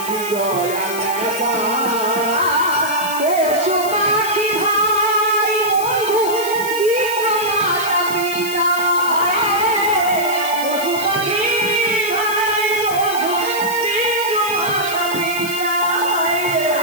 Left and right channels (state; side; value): noise; left; hiss, 10 dB below the sound